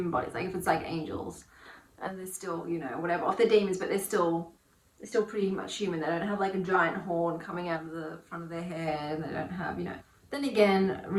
bodies, like if it's like angels and they're still, you know, whatever, or if they're demons, but they're still pretty much human. They don't have like a giant horn coming out of the front of their head, and they don't have, you know. Then again,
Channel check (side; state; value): both; identical; correlation 1.00